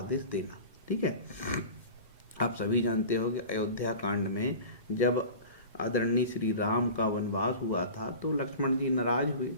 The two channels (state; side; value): inverted; both; correlation -0.36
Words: देना, ठीक है। आप सभी जानते हो कि अयोध्या कांड में जब आदरणीय श्री राम का वनवास हुआ था तो लक्ष्मण जी नाराज हुए,